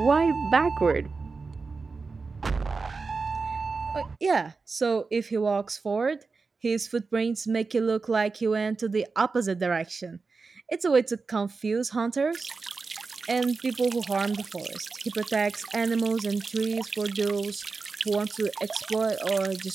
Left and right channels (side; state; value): left; quieter; 4.3 dB